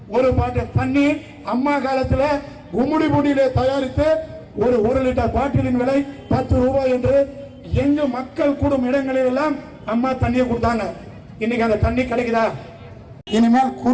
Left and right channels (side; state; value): both; identical; correlation 1.00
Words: ஒரு பாட்டு தண்ணி அம்மா காலத்துல கும்முடி புடியில தயாரித்து ஒரு 1 லிட்டர் பாட்டிலின் விலை 10 ரூபாய் என்று எங்கு மக்கள் கூடும் இடங்களில் எல்லாம் அம்மா தண்ணியை கொடுத்தாங்க. இன்னைக்கு அந்த தண்ணி கிடைக்குதா? இனிமேல்